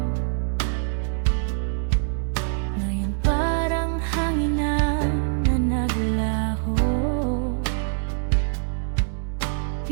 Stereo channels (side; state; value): left; silent; 62 dB below the other